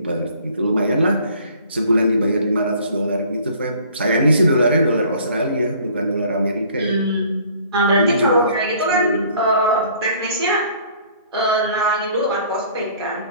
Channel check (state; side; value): inverted; both; correlation -0.54